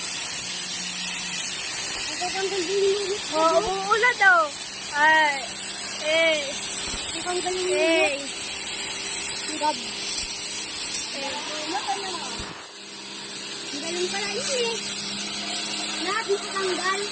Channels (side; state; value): both; identical; correlation 1.00